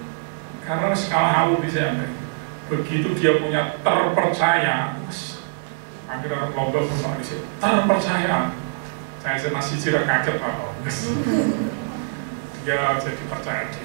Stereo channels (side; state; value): left; silent; digital silence